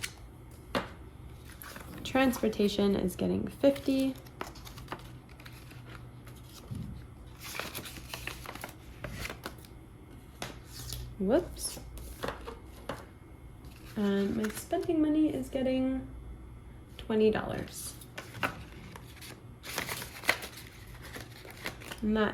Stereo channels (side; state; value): both; identical; correlation 1.00